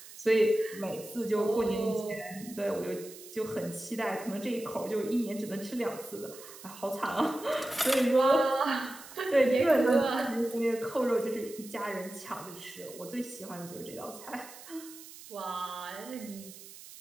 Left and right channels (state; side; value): noise; right; hiss, 16 dB below the sound